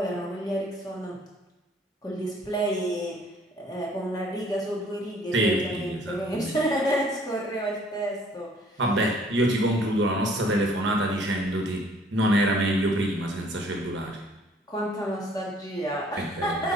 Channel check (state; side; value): normal; both; correlation 0.58